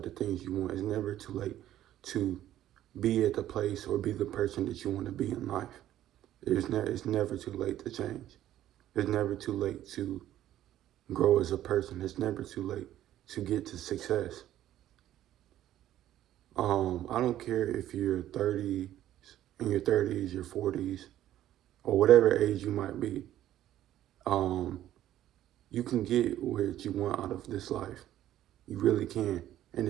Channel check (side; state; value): left; quieter; 12.6 dB